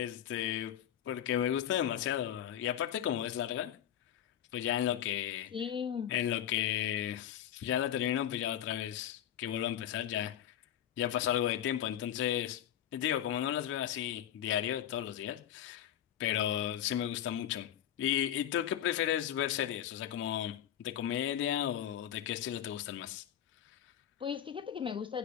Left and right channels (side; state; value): right; quieter; 10.7 dB